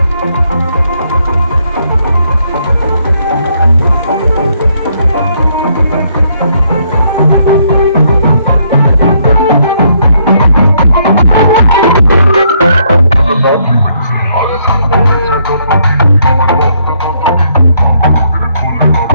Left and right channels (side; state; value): both; inverted; correlation -0.72